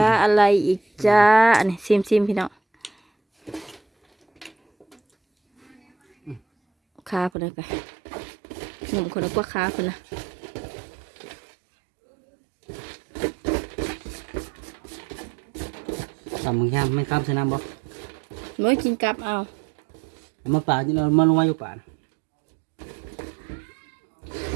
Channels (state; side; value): drops out; left; at 7.3 s